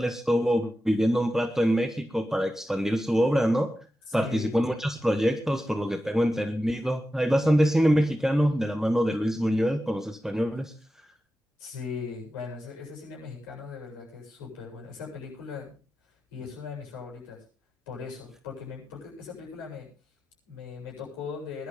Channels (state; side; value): normal; both; correlation 0.92